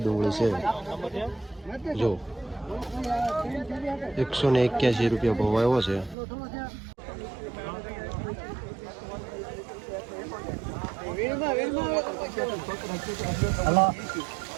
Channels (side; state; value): left; drops out; at 6.2 s